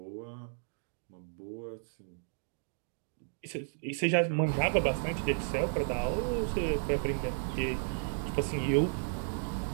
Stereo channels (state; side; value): silent; left; digital silence